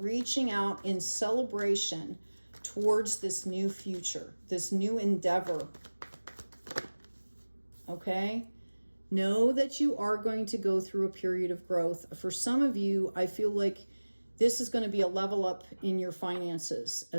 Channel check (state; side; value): inverted; both; correlation -1.00